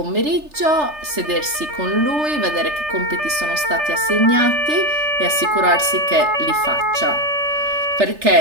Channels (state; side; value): late; left; 3.3 ms